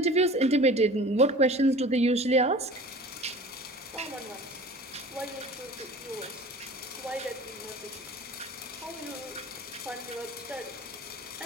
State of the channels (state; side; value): normal; both; correlation 0.41